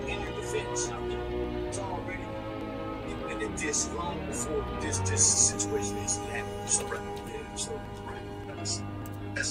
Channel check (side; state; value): both; identical; correlation 1.00